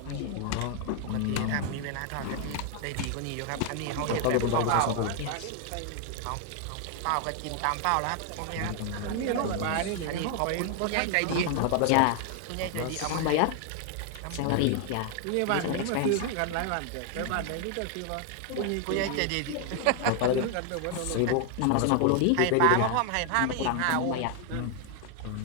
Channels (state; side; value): different; both; correlation 0.00